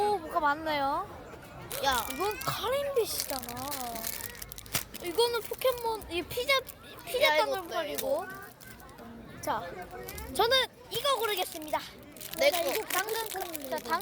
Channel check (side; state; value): both; identical; correlation 1.00